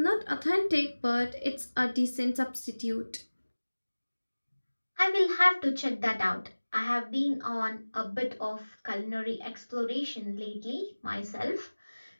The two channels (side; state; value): both; inverted; correlation -1.00